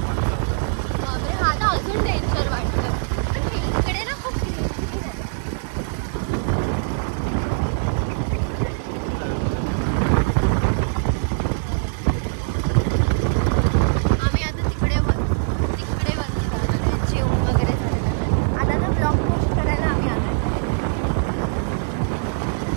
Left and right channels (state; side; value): silent; left; 64 dB below the other